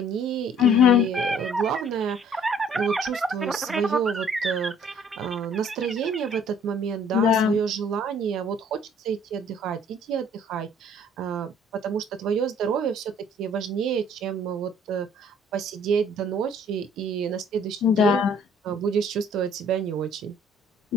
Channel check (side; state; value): both; normal; correlation 0.57